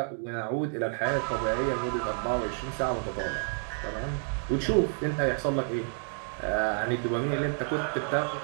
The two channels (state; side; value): silent; left; 58 dB below the other